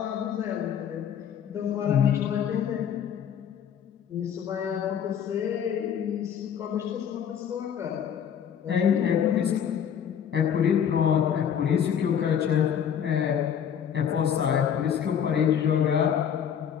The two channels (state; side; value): quieter; right; 8.5 dB